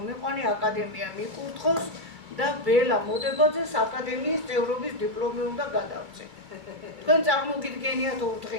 აკადემია მიკურთხოს და ბელა მოდებაძეს აკადემიის წევრობის დიპლომი უნდა გადავწე. თქვენ წარმოგიდგენიათ 2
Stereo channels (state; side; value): late; left; 2.3 ms